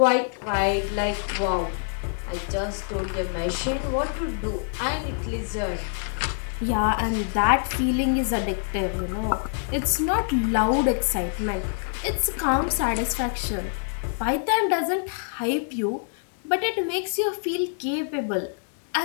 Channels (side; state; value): right; silent; digital silence